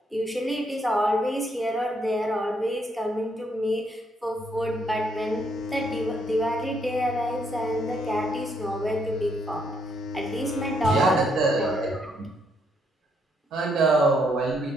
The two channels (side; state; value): both; normal; correlation 0.73